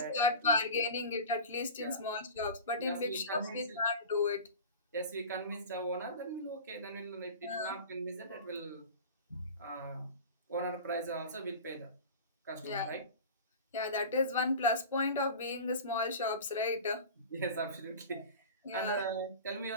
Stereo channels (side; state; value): both; inverted; correlation -0.34